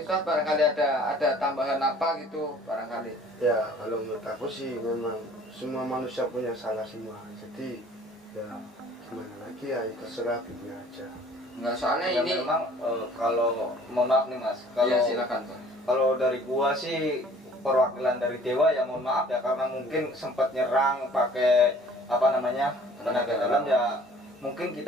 barangkali ada tambahan apa gitu barangkali. Ya kalau menurut aku sih memang semua manusia punya salah semua, jadi ya gimana lagi ya terserah Bibnya aja. Enggak, soalnya Ya, ini memang kalau mohon maaf nih Mas, kalau iya silakan, Pak. kalau dari gua sih perwakilan dari dewa ya mohon maaf ya, karena mungkin sempat nyerang pakai apa namanya tenaga dalam ya, mungkin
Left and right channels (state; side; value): normal; both; correlation 0.53